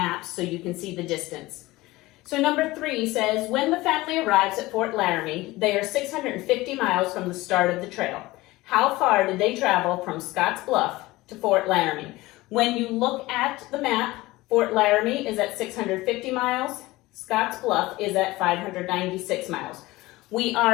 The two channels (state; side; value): quieter; right; 19.5 dB